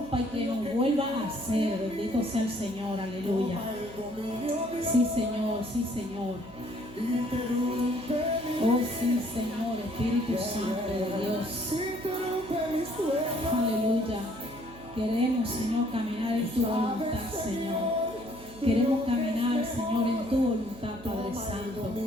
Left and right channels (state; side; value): noise; right; hum, 19 dB below the sound